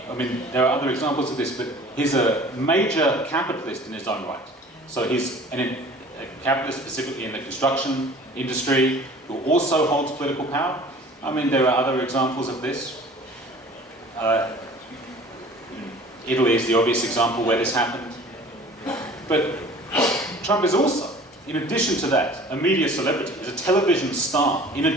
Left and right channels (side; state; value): both; normal; correlation 0.47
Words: are other examples of this, but he's a major capitalist in his own right. So he's a capitalist specifically in the construction industry who also holds political power. I mean, there are other examples of this. Italy is the obvious example where this happened. But Trump is also, in addition to that, a media celebrity. He's a television star, in